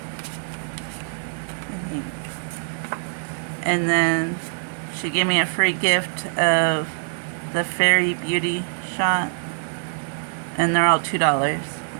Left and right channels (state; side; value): silent; left; digital silence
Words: And then she gave me a free gift of the Fairy Beauty shot. And they're all $2.